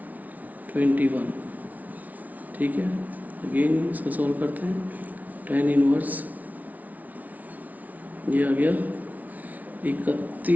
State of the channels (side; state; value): left; late; 0.074 ms